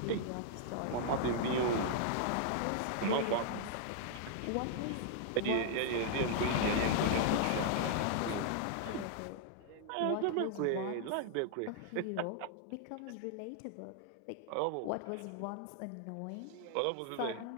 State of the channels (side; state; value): both; different; correlation -0.01